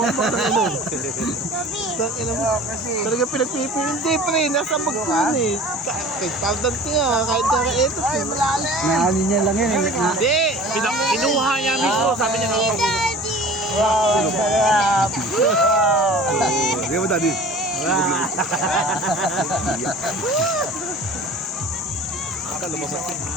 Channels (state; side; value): normal; both; correlation 0.42